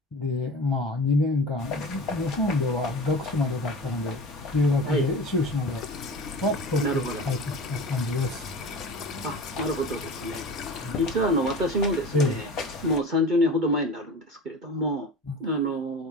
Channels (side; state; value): both; normal; correlation 0.35